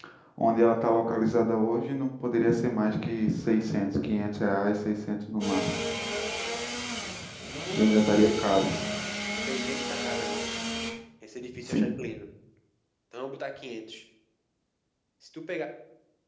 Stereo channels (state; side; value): identical; both; correlation 1.00